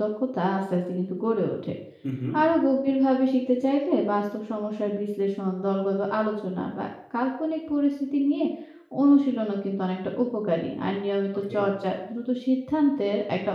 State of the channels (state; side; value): identical; both; correlation 1.00